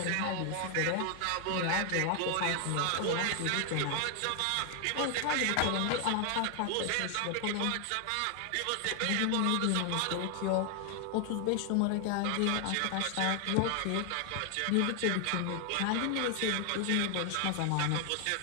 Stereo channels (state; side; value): different; both; correlation 0.00